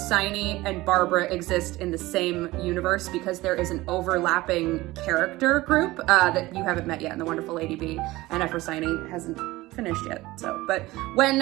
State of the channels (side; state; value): left; quieter; 19.0 dB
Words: and Barbara exist in the same universe because there is an overlapping character group that you haven't met yet in The Wonderful Lady Bee, and Ephrosyne hasn't finished yet. So, but